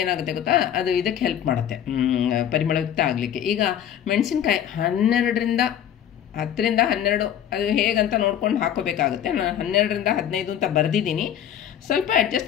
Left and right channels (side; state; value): right; quieter; 10.0 dB